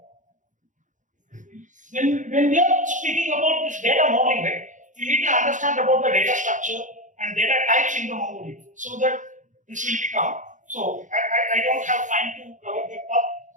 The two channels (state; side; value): late; left; 0.36 ms